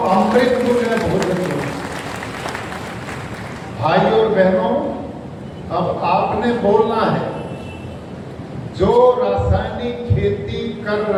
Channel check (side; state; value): both; identical; correlation 1.00